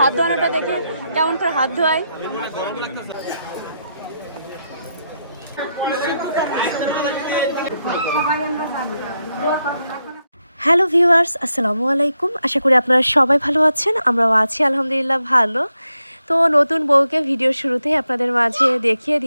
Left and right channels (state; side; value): inverted; both; correlation -0.84